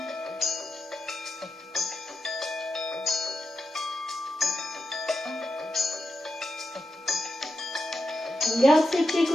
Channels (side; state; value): both; normal; correlation 0.88